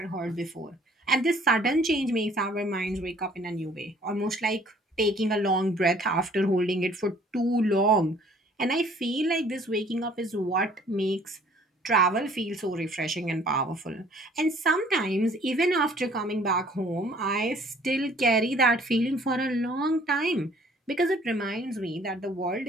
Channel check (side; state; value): both; normal; correlation 0.57